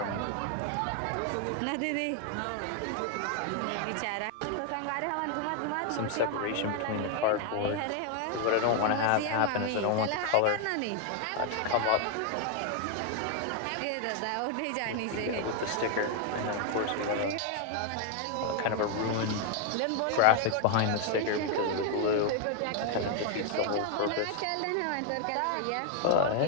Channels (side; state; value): both; different; correlation 0.00